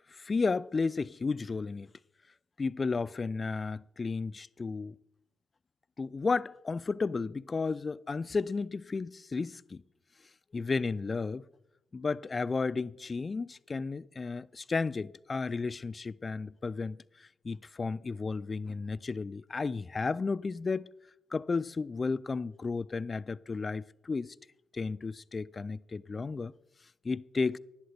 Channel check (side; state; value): right; quieter; 3.9 dB